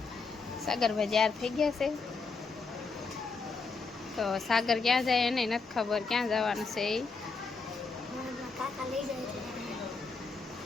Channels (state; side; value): quieter; right; 4.4 dB